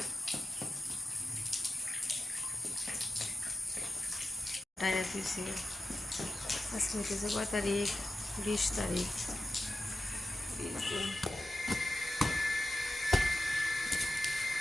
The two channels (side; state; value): both; normal; correlation 0.92